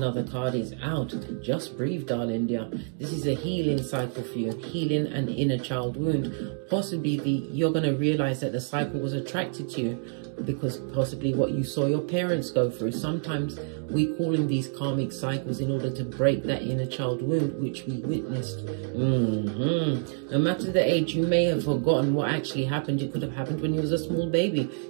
card is out. Just breathe, darling dear. This is a healing cycle for you. Healing an inner child wound. Possibly you're going to realize that the cycle was attracted to you because possibly what you saw your parents go through. Sometimes we call in these karmic cycles in order to break that inner child wound which we witnessed. No matter the age, you may have forgotten what actually happened. It could have happened when you was a small baby.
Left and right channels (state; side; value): silent; left; 60 dB below the other